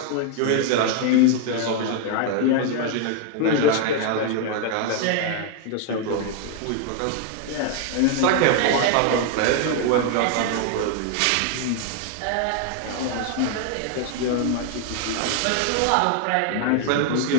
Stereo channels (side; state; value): both; different; correlation 0.00